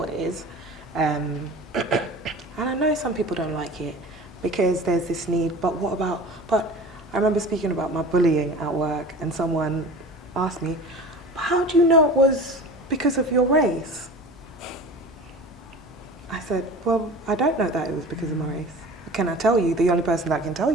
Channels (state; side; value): normal; both; correlation 0.37